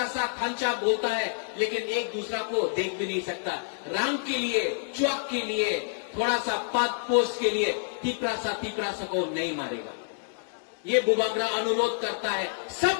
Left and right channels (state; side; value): silent; right; digital silence